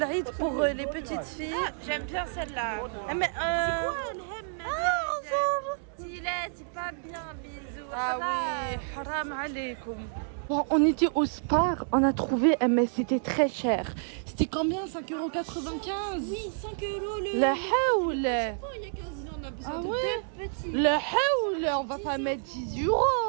pour les petites filles. J'aime bien celle-là. Ah, mais, C'est quoi elle aime c'est pas bien, bisous. Ah oui, haram alaikum. Bon, on était au Spar, on a trouvé, mais c'était très cher. C'était combien? 5,95 €? Oui, 5 euros le. La haoul! Il y a 15 ans, on a besoin Ah de ouais? deux petits. Le haoul! On va pas mettre 10 €.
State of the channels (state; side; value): silent; left; digital silence